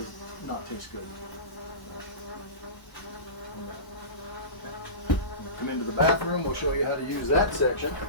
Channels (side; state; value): right; late; 1.0 ms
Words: not taste good. Come into the bathroom, we'll show you how to use that section.